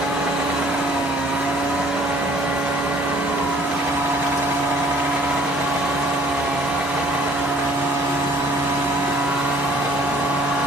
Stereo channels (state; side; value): normal; both; correlation 0.56